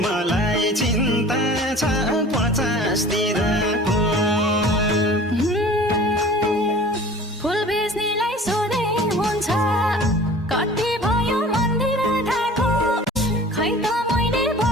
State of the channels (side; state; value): both; normal; correlation 0.43